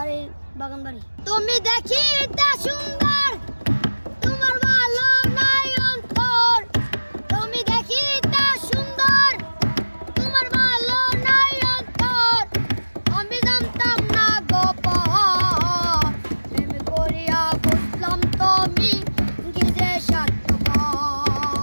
বাগান বাড়ি। তুমি দেখিতে সুন্দর, তোমার ভালো নাই অন্তর, তুমি দেখিতে সুন্দর, তোমার ভালো নাই অন্তর, আমি জানতাম না গোপন। প্রেম করিয়া বুঝলাম তুমি কি যে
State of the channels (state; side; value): inverted; both; correlation -1.00